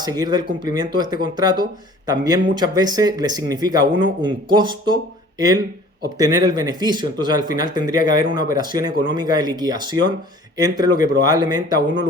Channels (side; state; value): both; normal; correlation 0.49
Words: del cumplimiento de este contrato, también muchas veces le significa a uno un costo el obtener el beneficio. Entonces al final tendría que haber una operación económica de liquidación entre lo que probablemente a uno le